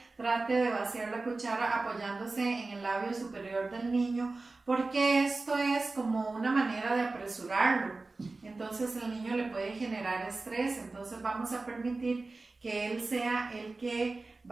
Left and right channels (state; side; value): quieter; left; 3.5 dB